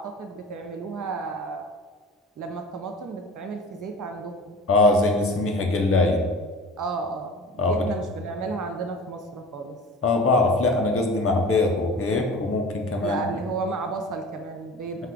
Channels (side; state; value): both; normal; correlation 0.38